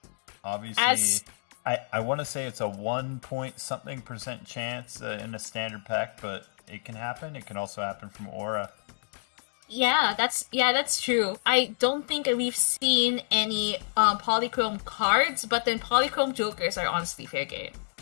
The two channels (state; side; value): silent; right; digital silence